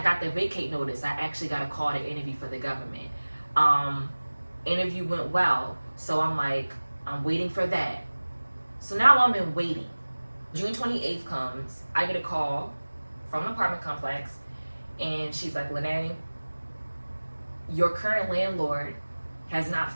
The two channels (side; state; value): both; inverted; correlation -1.00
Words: got the vacate notice, I actually got a call to interview for the government. Interview went well. So I'm like, I'm waiting for that. So now I'm in waiting. June 28th comes, I get a call from an apartment complex, and she's like, Lene, your current landlord has not